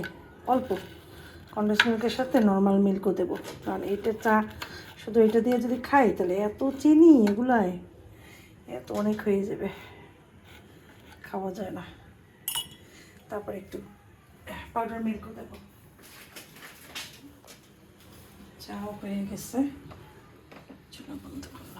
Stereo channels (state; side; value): identical; both; correlation 1.00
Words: অল্প কন্ডেন্স মিল্কের সাথে নর্মাল মিল্কও দেবো, কারণ এইটা চা শুধু এটা দিয়ে যদি খাই তাহলে এত চিনি এগুলায় এত অনেক হয়ে যাবে, খাওয়া যায় না। তারপরে একটু পাউডার মিল্কও দেবো। চাও হয়ে গেছে, চুলা বন্ধ